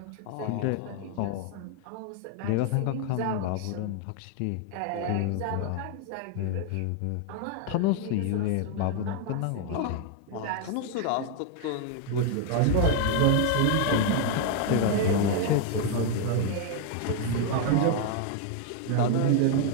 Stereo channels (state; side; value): different; both; correlation 0.00